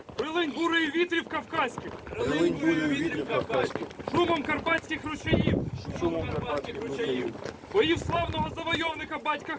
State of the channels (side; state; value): both; identical; correlation 1.00